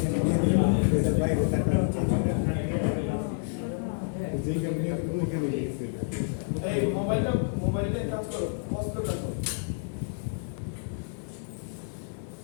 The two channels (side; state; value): right; silent; digital silence